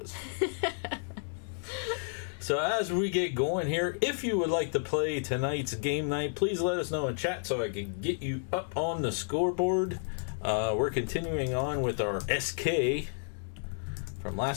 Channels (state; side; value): silent; right; 57 dB below the other